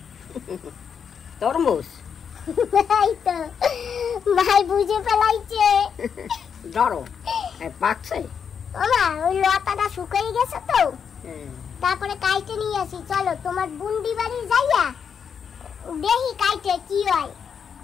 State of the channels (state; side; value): quieter; right; 7.0 dB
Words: তরমুজ। এই তো ভাই বুঝে ফেলাইছে। ধরো, পাকছে। ওমা, ওই লতাটা শুকিয়ে গেছে তো, তারপরে কাইটে নিয়ে আসি। চলো তোমার বুন্ডি বাড়ি যাইয়া দেখি কাইটে কি হয়,